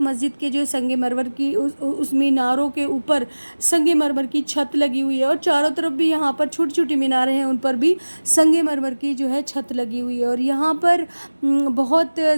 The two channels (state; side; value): inverted; both; correlation -1.00